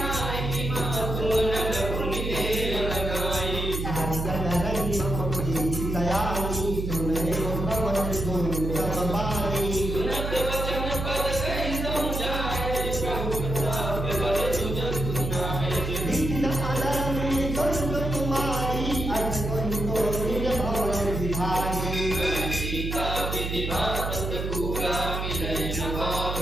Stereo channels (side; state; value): right; noise; hum, 3 dB below the sound